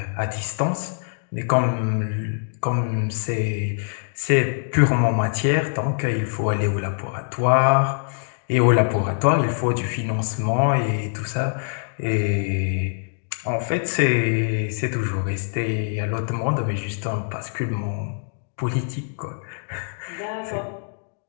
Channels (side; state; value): right; silent; digital silence